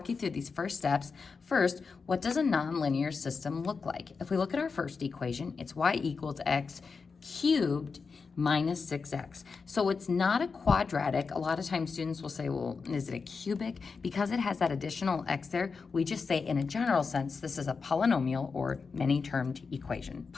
you through these first steps. First, what does a non-linear system look like? If we look at our first equation, it's y equals x cubed minus 6x. So it's not a quadratic. A lot of times students will say, well, is it a cubic? Because it has that additional x there, we just say in a general sense, this is a polynomial or many-termed equation.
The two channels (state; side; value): quieter; right; 5.0 dB